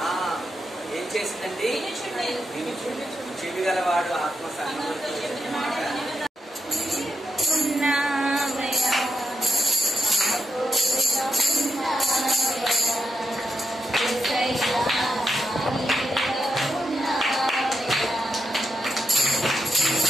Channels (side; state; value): both; normal; correlation 0.85